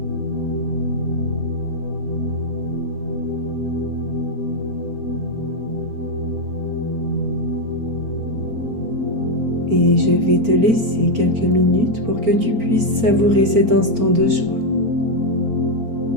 Et je vais te laisser quelques minutes pour que tu puisses savourer cet instant de joie,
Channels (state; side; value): late; left; 4.4 ms